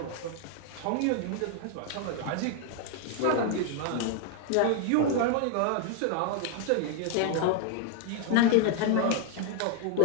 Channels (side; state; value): both; different; correlation 0.01